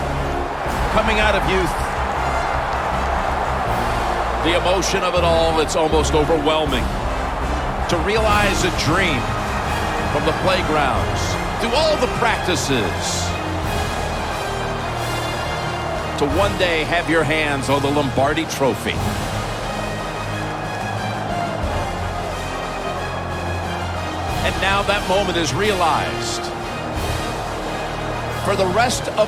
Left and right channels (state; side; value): identical; both; correlation 1.00